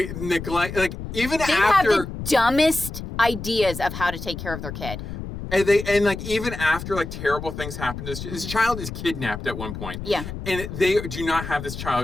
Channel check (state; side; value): noise; left; rumble, 8 dB below the sound